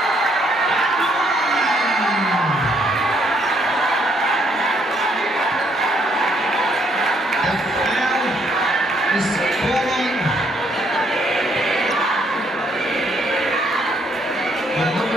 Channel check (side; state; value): both; normal; correlation 0.70